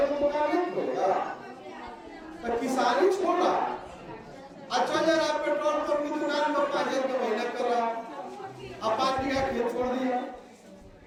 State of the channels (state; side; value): identical; both; correlation 1.00